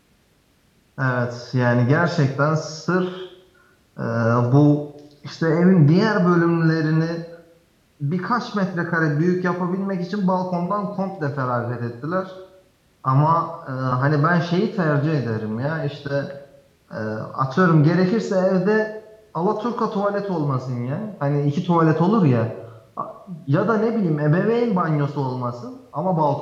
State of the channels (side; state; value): both; identical; correlation 1.00